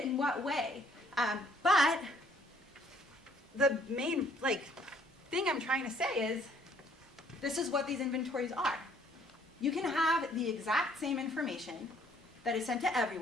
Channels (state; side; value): normal; both; correlation 0.62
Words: in what way? But the main, thing I'm trying to say is, this is what these inventories are. You can have the exact same information that is sent to